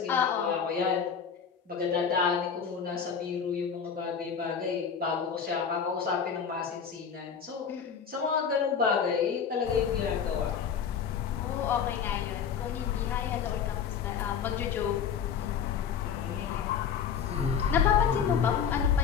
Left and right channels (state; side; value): quieter; right; 7.1 dB